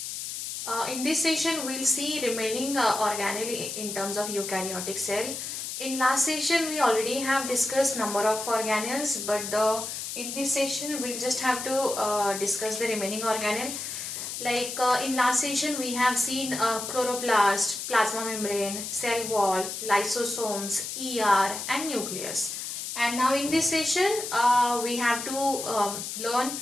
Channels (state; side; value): noise; left; hiss, 6 dB below the sound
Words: In this session, we'll see remaining organelle in terms of eukaryotic cell. In last session, we already have discussed number of organelles, but in this session, we'll just have to discuss the remaining organelle. Like in last session, we have seen chloroplast, plasma membrane, cell wall, lysosomes, ER, and nucleus. And now in this session, we have to learn